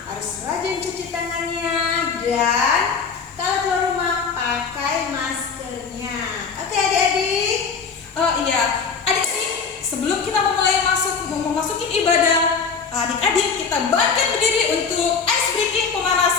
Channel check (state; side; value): quieter; right; 5.6 dB